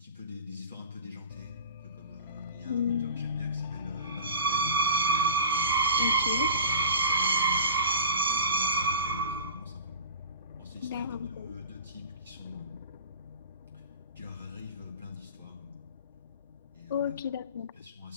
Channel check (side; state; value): both; inverted; correlation -0.38